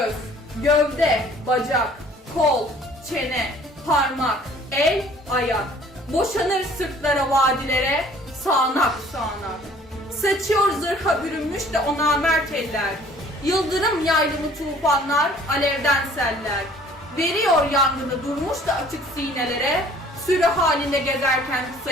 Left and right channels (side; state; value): both; normal; correlation 0.54